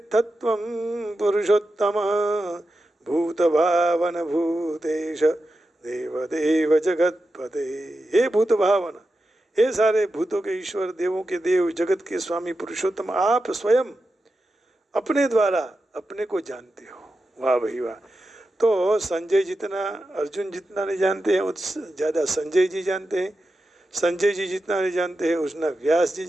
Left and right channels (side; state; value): both; normal; correlation 0.90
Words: पुरुषोत्तम भूतभावन भूतेश देवदेव जगतपते। हे भूत भावन, हे सारे भूतों के ईश्वर, देवों के देव, जगत के स्वामी पुरुषोत्तम, आप स्वयं अपने द्वारा अपने को जानते हो। वाह भाई वाह। तो संजय जितना अर्जुन जितना नहीं जानते हैं उतना ज़्यादा संजय जी जानते हैं। संजय जी जितना नहीं जानते हैं उतना व्यास जी